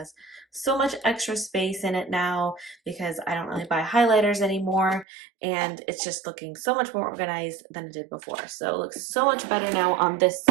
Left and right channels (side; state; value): left; drops out; at 5.1 s